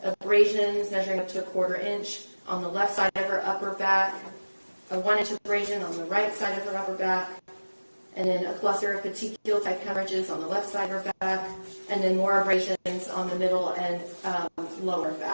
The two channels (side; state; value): both; inverted; correlation -1.00